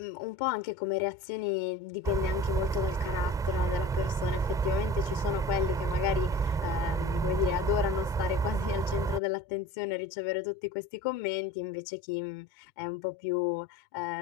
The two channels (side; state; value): both; normal; correlation 0.40